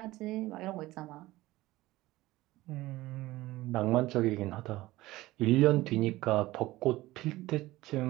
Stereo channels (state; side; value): quieter; left; 17.9 dB